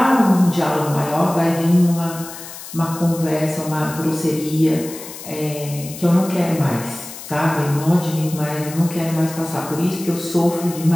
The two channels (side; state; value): left; noise; hiss, 13 dB below the sound